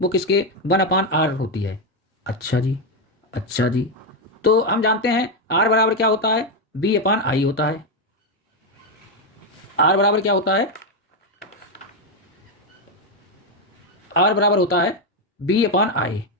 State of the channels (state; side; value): normal; both; correlation 0.05